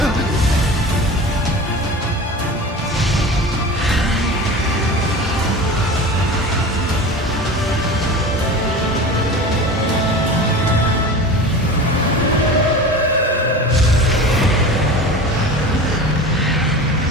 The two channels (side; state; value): both; normal; correlation 0.34